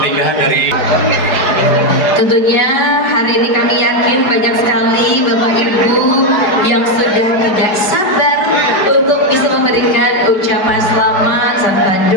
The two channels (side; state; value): right; late; 4.7 ms